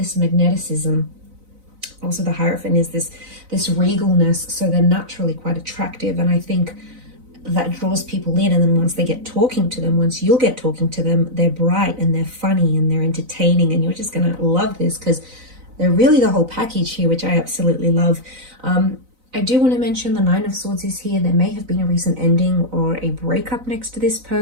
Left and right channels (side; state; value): left; late; 4.0 ms